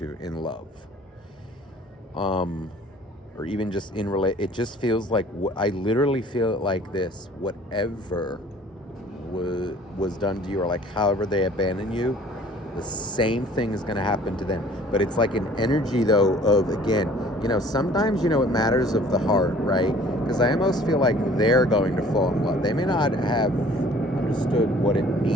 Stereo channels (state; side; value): normal; both; correlation 0.52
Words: in love. Or even just in it just feels like, I literally feel it like this: whatever was done to you, or like however they abandon you, the same thing is going to happen to them. But it's like an energy, though, of, again, sometimes, it matters of the heart, right? Because I almost feel like they're going to fall in love. They may not have understood what it